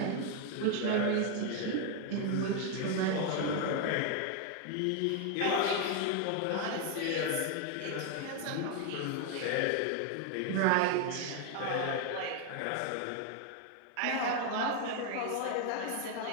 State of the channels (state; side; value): different; both; correlation 0.01